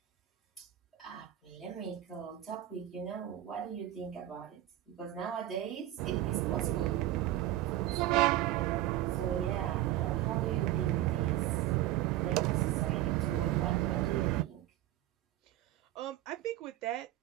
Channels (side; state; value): left; quieter; 14.0 dB